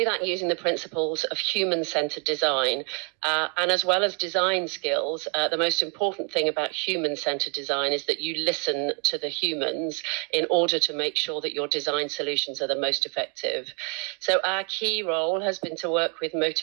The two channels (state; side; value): quieter; left; 35.2 dB